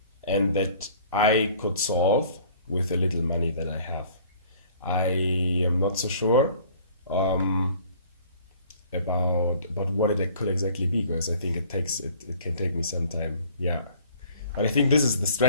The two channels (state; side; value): inverted; both; correlation -0.52